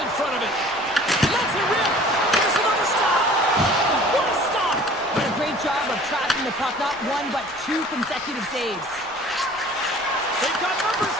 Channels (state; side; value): noise; right; rumble, 26 dB below the sound